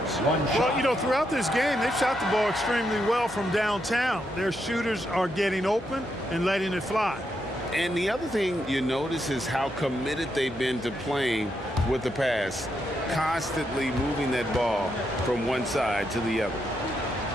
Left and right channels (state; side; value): normal; both; correlation 0.81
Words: Well, you know, throughout this game, they've shot the ball extremely well from downtown. Their shooters are getting open and letting it fly. And the other thing you notice is how committed they've been to playing with the pass, constantly moving that ball from one side to the other.